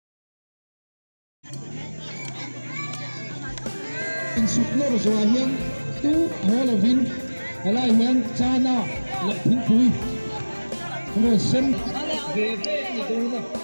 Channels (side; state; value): both; inverted; correlation -1.00